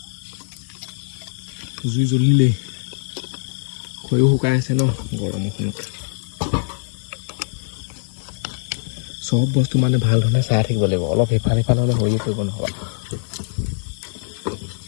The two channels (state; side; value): silent; right; 60 dB below the other